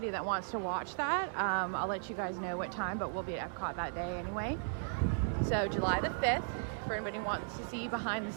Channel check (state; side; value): silent; left; digital silence